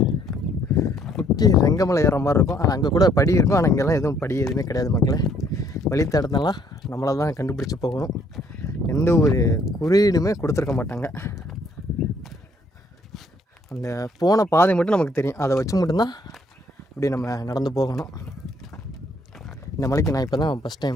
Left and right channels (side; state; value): both; normal; correlation 0.65